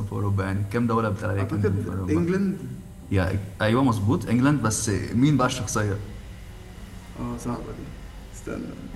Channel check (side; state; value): both; identical; correlation 1.00